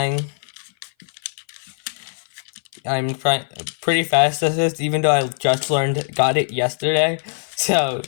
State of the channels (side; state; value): right; silent; 58 dB below the other